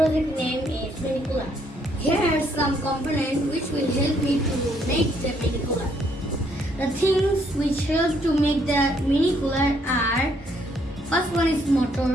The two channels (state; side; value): normal; both; correlation 0.70